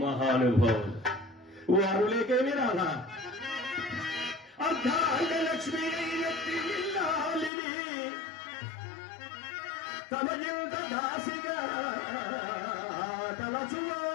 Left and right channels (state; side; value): drops out; right; at 7.5 s